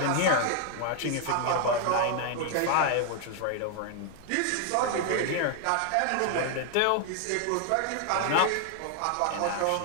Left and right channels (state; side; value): different; both; correlation 0.00